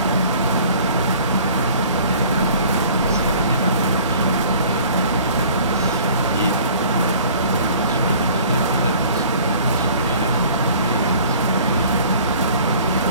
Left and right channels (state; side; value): inverted; both; correlation -0.50